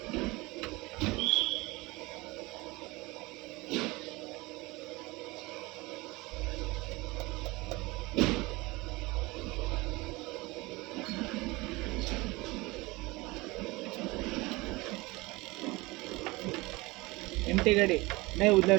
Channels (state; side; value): quieter; left; 22.7 dB